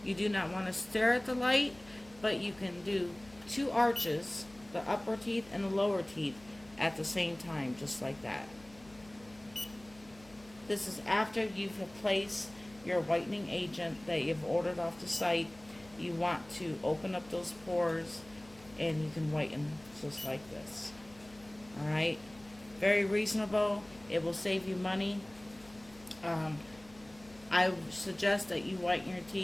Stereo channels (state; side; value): noise; left; hum, 24 dB below the sound